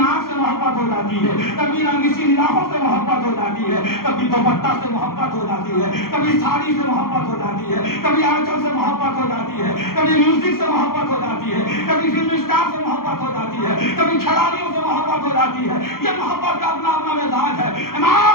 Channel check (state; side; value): late; right; 0.92 ms